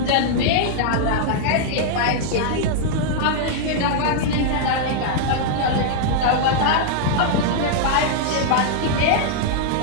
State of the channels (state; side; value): different; both; correlation -0.01